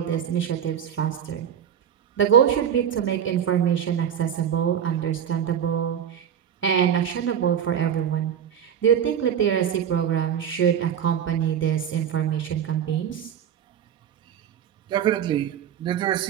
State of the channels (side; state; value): left; quieter; 9.0 dB